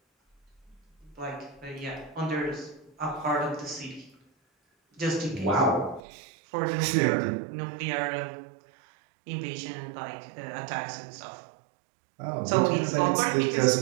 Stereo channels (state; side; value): drops out; left; at 6.0 s